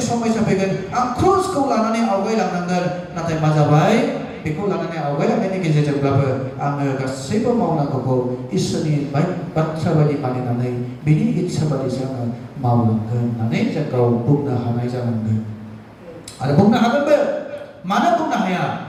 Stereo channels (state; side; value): identical; both; correlation 1.00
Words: समस्या फैगोन आं क्रुजखौ लानानै आवगायलांनांगोन नाथाय मा जाबाय बेखौ लानानै आवगायलांनायनि गेजेरजोंब्लाबो आङो गासैबो मावनांगौखौ इसोरनि बाथ्रा बायदि मानिनानै बिनि इच्छा बादिसो आङो मावलांगोन होननानै जों गाव बुंनो हानाय जानांगोन आरो बुंनो हागोनबो मानो बुंनो हाया